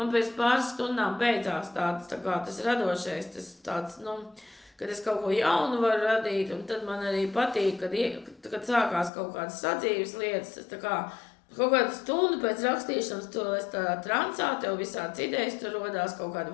pēc pāris stundām beidzās tas radošais, tas tāds, kad es kaut ko jaunu varu radīt, un tad man arī patīk, kad sākās kaut kādas sadzīves lietas, tas tā kā Kaut kādu stundu pēc rakstīšanas tu esi tādā transā, tev visāds idejas, tur rodās kaut kādi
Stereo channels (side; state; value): right; drops out; at 9.1 s